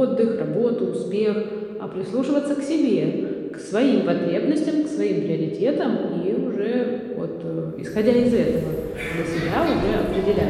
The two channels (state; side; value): identical; both; correlation 1.00